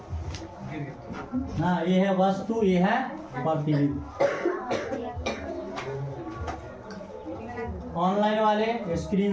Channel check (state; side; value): identical; both; correlation 1.00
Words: हाँ ये है वस्तु, ये है प्रतिबिंब। ऑनलाइन वाले